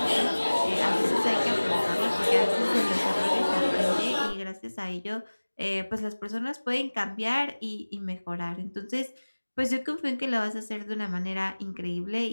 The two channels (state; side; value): inverted; both; correlation -1.00